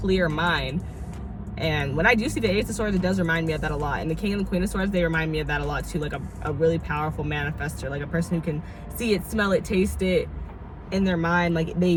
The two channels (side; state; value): both; identical; correlation 1.00